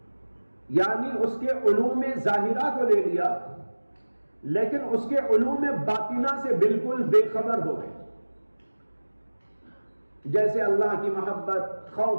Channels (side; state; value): both; inverted; correlation -1.00